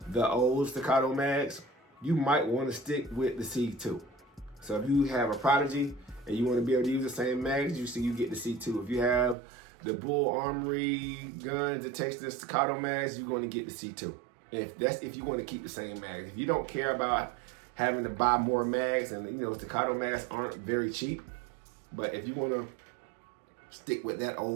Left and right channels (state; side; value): drops out; left; at 9.3 s